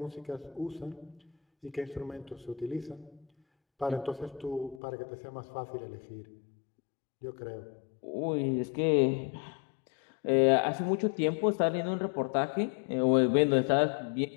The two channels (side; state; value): right; drops out; at 4.8 s